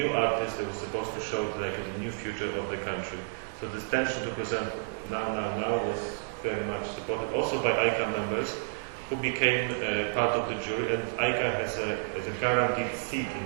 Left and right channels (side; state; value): left; silent; 58 dB below the other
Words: artist that was supposed to show like the new future of the country. So this tension to present now was very much supported also by AICA members, who became part of the jury, and AICA has a guaranteed seat